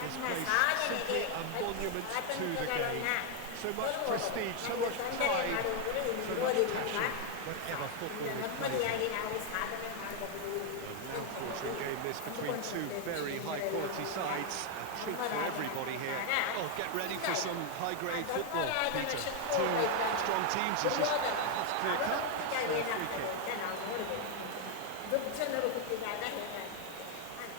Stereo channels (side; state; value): both; different; correlation 0.01